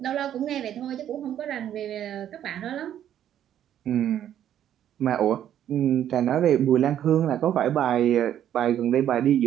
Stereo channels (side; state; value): left; quieter; 10.6 dB